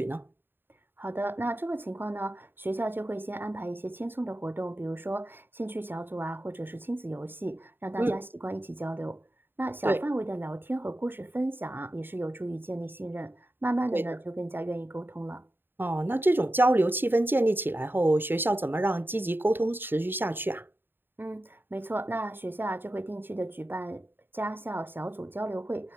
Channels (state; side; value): late; left; 0.098 ms